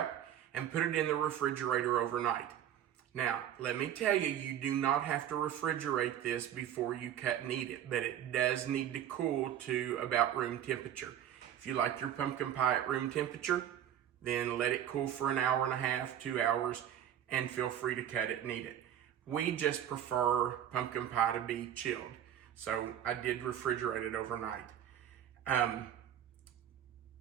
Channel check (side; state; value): left; quieter; 10.5 dB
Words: and put it in the refrigerator overnight. Now, let me tell you, you do not have to refrigerate this before you cut and eat it, but it does need to cool to about room temperature. If you like your pumpkin pie at room temperature, then let it cool for an hour and a half, 2 hours, and feel free to cut it and eat it. We just prefer pumpkin pie to be chilled, so I did refrigerate it overnight.